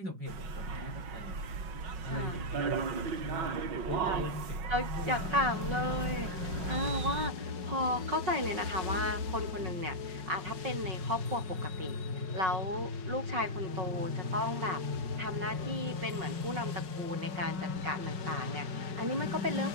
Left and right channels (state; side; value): late; left; 5.5 ms